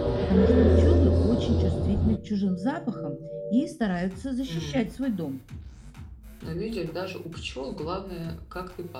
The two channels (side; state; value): both; identical; correlation 1.00